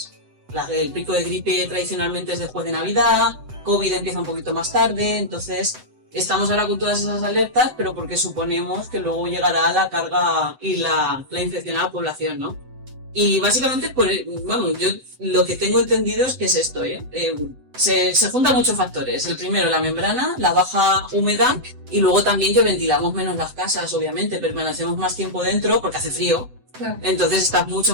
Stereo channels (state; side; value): late; left; 7.9 ms